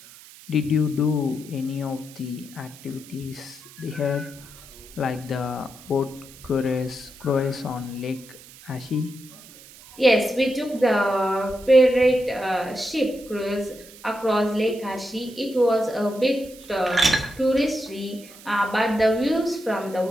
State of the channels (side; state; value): right; noise; hiss, 20 dB below the sound